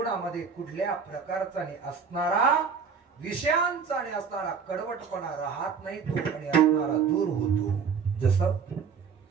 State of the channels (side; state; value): left; quieter; 6.0 dB